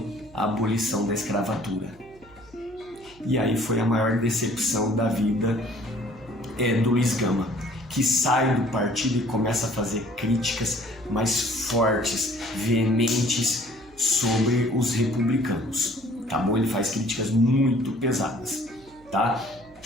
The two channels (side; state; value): right; noise; hum, 26 dB below the sound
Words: a abolição da escravatura. E aí foi a maior decepção da vida do Luiz Gama, que sai do partido e começa a fazer críticas mais fortes, veementes sobre os republicanos, tá bom? Ele faz críticas muito pesadas, tá?